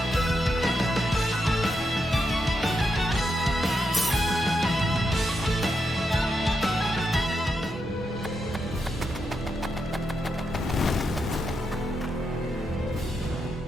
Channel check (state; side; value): normal; both; correlation 0.83